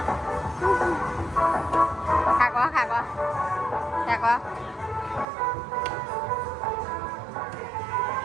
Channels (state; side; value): drops out; left; at 5.2 s